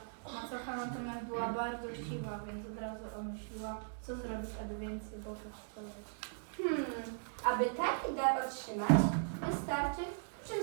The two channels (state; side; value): silent; left; digital silence